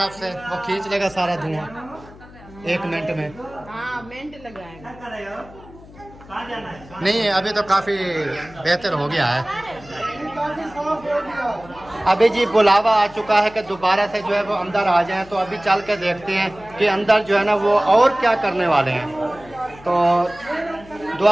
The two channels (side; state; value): left; noise; hum, 21 dB below the sound